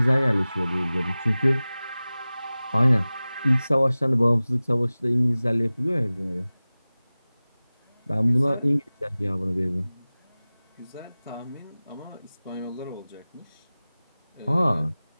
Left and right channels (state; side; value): inverted; both; correlation -0.98